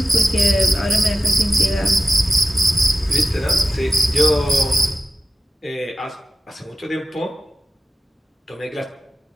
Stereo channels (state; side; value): normal; both; correlation 0.92